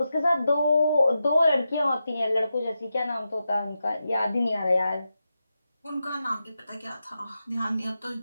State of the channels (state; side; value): inverted; both; correlation -0.89